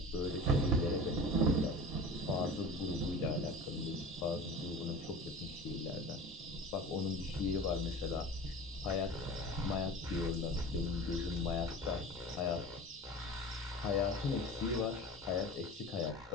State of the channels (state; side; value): normal; both; correlation 0.36